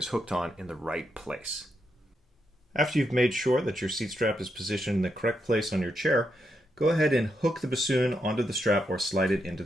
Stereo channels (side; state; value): both; normal; correlation 0.82